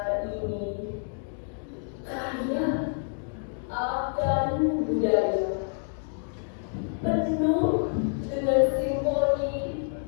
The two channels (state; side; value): silent; right; 59 dB below the other